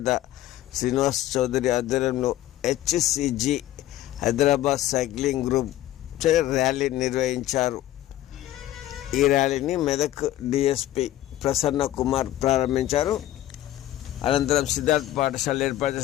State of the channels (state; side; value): quieter; right; 13.8 dB